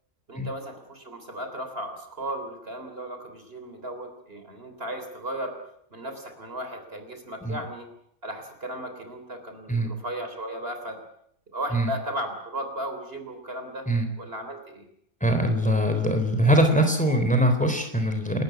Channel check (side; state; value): both; normal; correlation 0.33